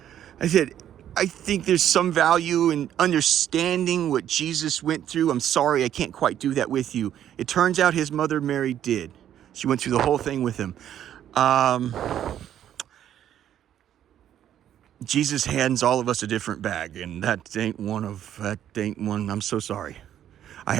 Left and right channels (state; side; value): quieter; left; 10.7 dB